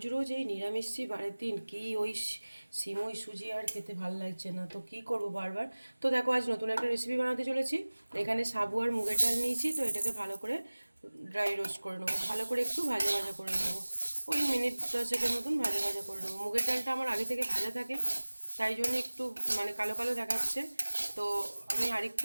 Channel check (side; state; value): both; inverted; correlation -1.00